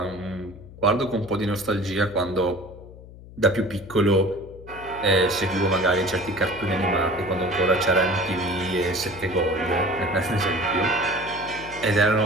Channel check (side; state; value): left; noise; hum, 18 dB below the sound